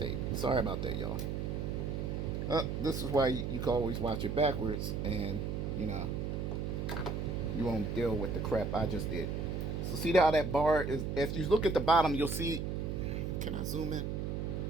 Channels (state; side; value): noise; right; hum, 2 dB below the sound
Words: Sorry about that, y'all. This is why you can always watch it backwards, and you know, you won't deal with the crap I just did. So see how that bar is? If you look at the bottom, you'll see. Can I zoom in?